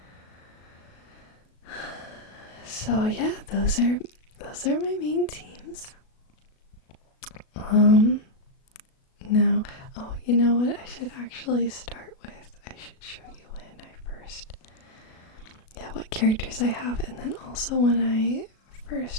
So yeah, those are my main teams. Now, oh, you know what I should actually start with? I should show you when I first, what characters I have, and then also when I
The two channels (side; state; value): right; late; 37 ms